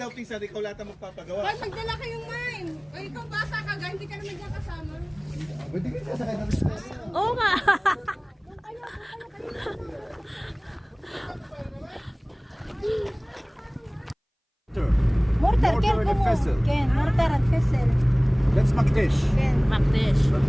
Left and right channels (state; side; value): identical; both; correlation 1.00